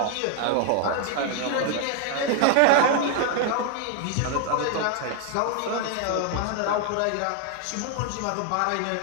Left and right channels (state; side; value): different; both; correlation 0.00